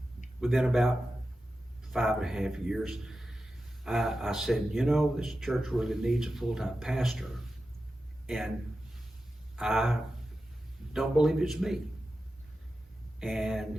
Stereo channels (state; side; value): normal; both; correlation 0.92